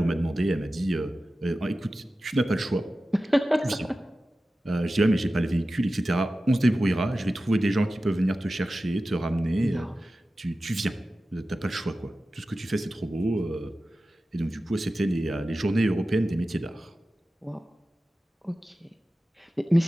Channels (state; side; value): normal; both; correlation 0.94